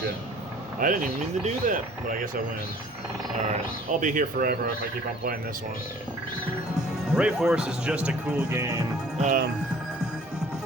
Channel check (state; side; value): normal; both; correlation 0.52